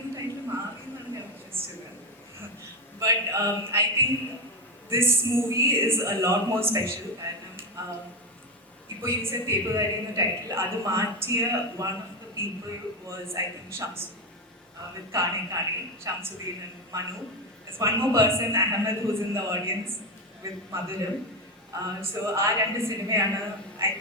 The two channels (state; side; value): normal; both; correlation 0.13